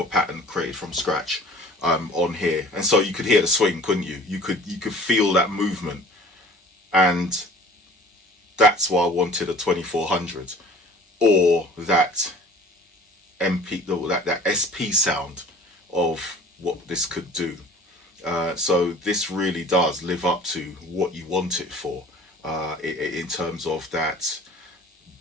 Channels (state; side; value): normal; both; correlation 0.46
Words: pattern created from scratch on here, and so you could hear the swing, couldn't you? You could feel that movement, and that's why I wanted a 2400 or that that SP sound of what this could do. So this really does live up to what you want it for, in terms of that